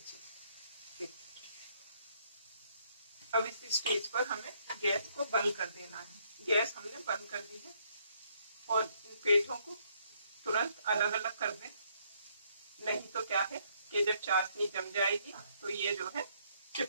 देखिए अब इस स्टेज पर हमें गैस को बंद कर देना है। गैस हमने बंद कर दी है और इन पेठों को तुरंत अलग अलग कर दें, नहीं तो क्या है कि जब चाशनी जम जाएगी तो ये जो है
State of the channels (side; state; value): both; inverted; correlation -0.70